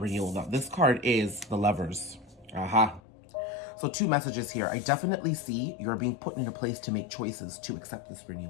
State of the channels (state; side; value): drops out; right; at 3.0 s